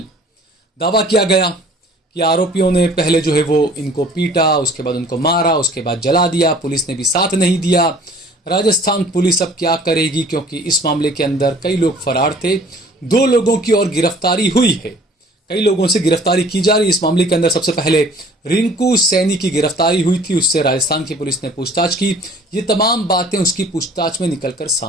दावा किया गया कि आरोपियों ने पहले जो है वो इनको पीटा, उसके बाद उनको मारा, उसके बाद जला दिया, पुलिस ने भी साथ नहीं दिया। राजस्थान पुलिस अब क्या करेगी, क्योंकि इस मामले के अंदर कई लोग फरार थे, 2 लोगों की और गिरफ्तारी हुई है, कई लोगों से गिरफ्तारी की जा रही है। इस मामले के अंदर सबसे पहले रिंकू सैनी की गिरफ्तारी हुई थी, उससे राजस्थान की पुलिस ने पूछताछ की। ये तमाम बातें उसकी पूछताछ में निकलकर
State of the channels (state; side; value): normal; both; correlation 0.51